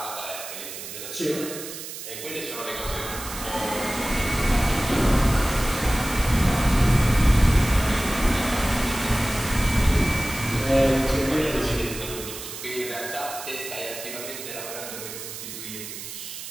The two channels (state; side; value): noise; right; hiss, 10 dB below the sound